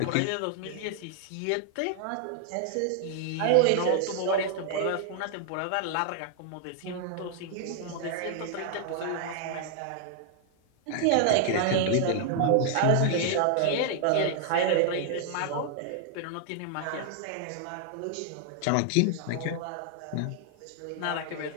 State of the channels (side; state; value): both; different; correlation 0.00